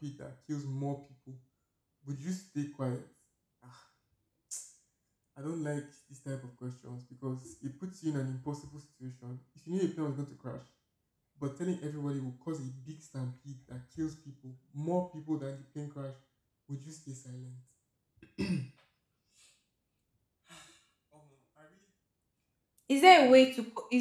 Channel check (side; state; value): both; identical; correlation 1.00